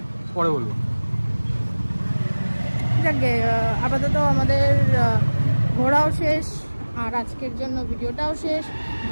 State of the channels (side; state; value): both; inverted; correlation -1.00